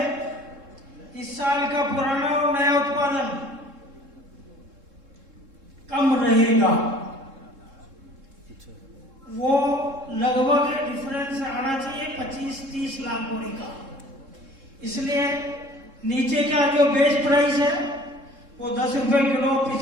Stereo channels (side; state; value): left; late; 3.7 ms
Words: इस साल का पुराना और नया उत्पादन कम रहेगा। वो लगभग डिफरेंस आना चाहिए 25-30 लाख बोरी का। इसलिए नीचे का जो बेस प्राइस है वो 10 रुपए किलो